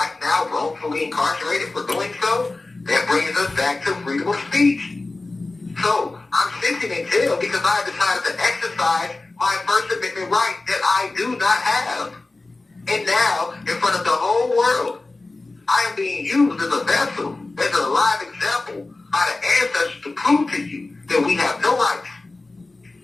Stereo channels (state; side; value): quieter; right; 3.2 dB